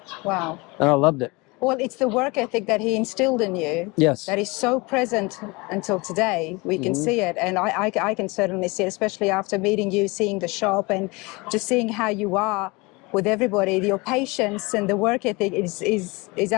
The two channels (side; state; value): right; quieter; 25.5 dB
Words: Wow. And I loved it. Well, it's the work ethic that he instilled in you. Yes. That is so present until today. We can see it. And I can certainly see it, especially after meeting you, seeing the shop and just seeing how you are with everybody. Your patience and the work ethic is